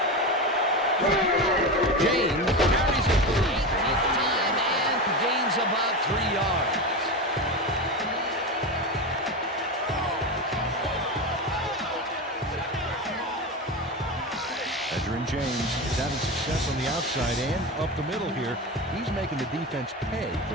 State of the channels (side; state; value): both; normal; correlation 0.20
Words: James carries it for the 18th time and gains about 3 yards. Edgerrin James is having success on the outside and up the middle here. He's making the defense pay